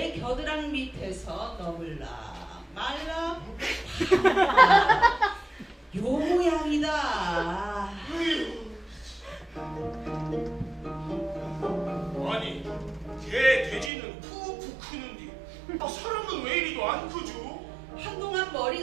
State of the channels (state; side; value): drops out; left; at 13.9 s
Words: 겨드랑 밑에서 너물라 말라 요 모양이다. 아니 돼지는 푹푹 크는데 사람은 왜 이리도 안 크죠? 한동안